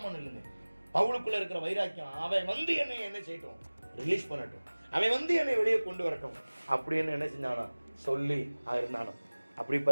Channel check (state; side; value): inverted; both; correlation -1.00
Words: இல்லைங்க, பவுலுக்குள்ள இருக்கிற வைராக்கியம். அவன் வந்து என்னை என்ன செய்யட்டும், ரிலீஸ் பண்ணட்டும், அவன் வந்து என்னை வெளியே கொண்டு வரட்டும் அப்படின்னு என்ன செஞ்சானா சொல்லி இருந்தானோ. அப்படி